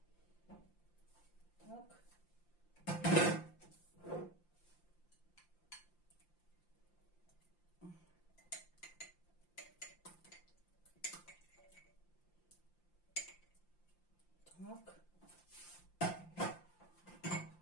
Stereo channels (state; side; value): late; right; 5.8 ms